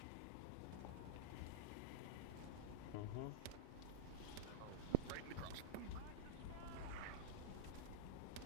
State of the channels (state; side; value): different; both; correlation -0.01